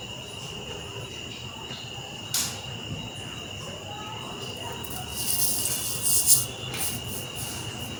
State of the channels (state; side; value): identical; both; correlation 1.00